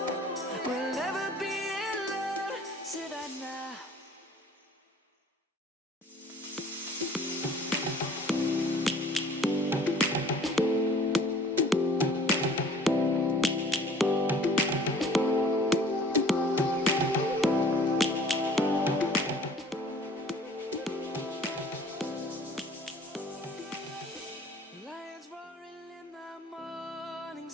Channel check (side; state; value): both; normal; correlation 0.51